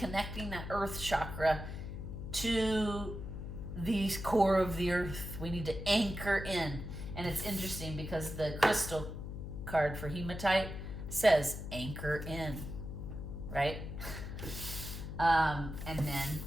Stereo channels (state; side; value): noise; left; hum, 7 dB below the sound